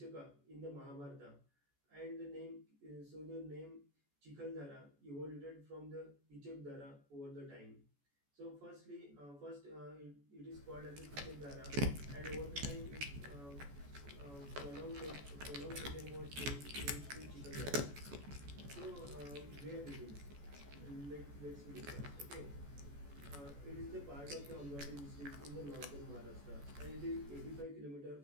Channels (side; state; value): left; late; 14 ms